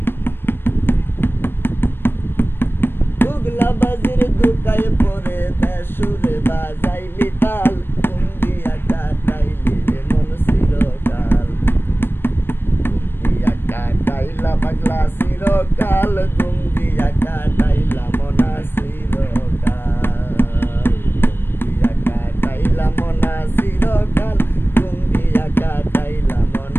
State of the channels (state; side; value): late; right; 0.10 ms